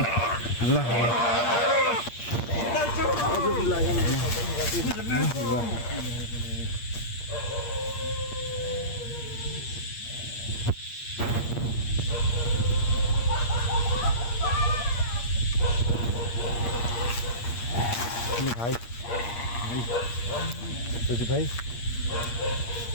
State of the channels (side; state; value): right; late; 8.5 ms